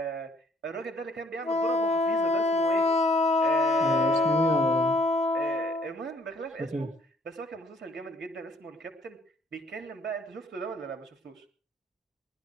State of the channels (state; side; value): normal; both; correlation 0.61